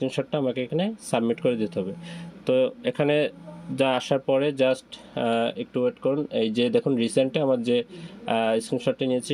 আমাকে এখানে সাবমিট করে দিতে হবে। তো এখানে যা আসার পরে জাস্ট একটু ওয়েট করুন। এই যে দেখুন রিসেন্টে আমার যে স্ক্রিনশটটি নিয়েছি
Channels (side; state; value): both; identical; correlation 1.00